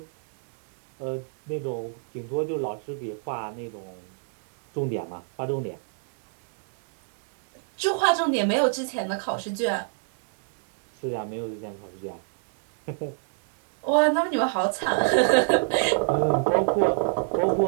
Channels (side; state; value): left; silent; digital silence